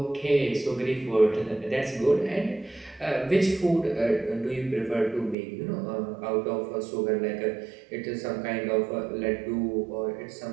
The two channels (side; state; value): left; drops out; at 5.4 s